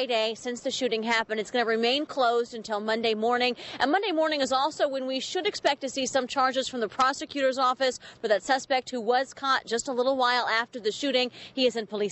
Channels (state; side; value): identical; both; correlation 1.00